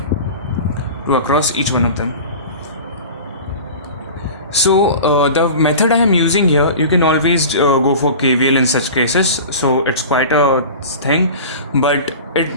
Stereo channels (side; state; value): both; inverted; correlation -0.36